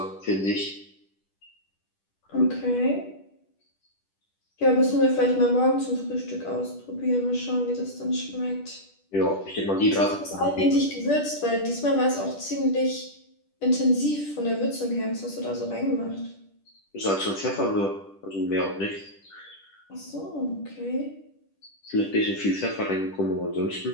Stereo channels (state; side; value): late; right; 10 ms